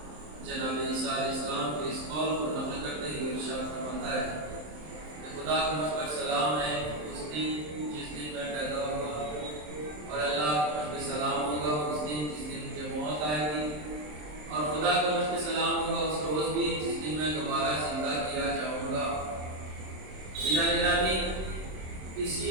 جناب عیسیٰ علیہ السلام کے اس قول کو نقل کرتے ہوئے ارشاد فرماتا ہے کہ خدا کا مجھ پر سلام ہے اس دن جس دن میں پیدا ہوا اور اللہ کا مجھ پہ سلام ہوگا اس دن جس دن مجھے موت آئے گی اور خدا کا مجھ پہ سلام ہوگا اس روز بھی جس دن میں دوبارہ زندہ کیا جاؤں گا. گرامی اسی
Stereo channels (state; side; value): late; left; 27 ms